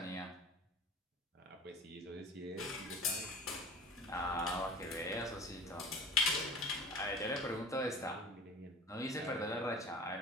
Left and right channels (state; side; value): normal; both; correlation 0.40